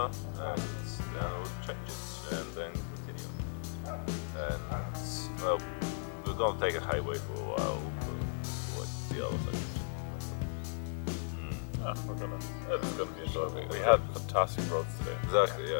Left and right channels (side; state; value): right; silent; 54 dB below the other